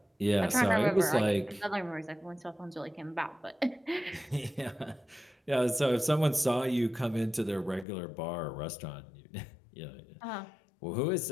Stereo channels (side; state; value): right; drops out; at 7.9 s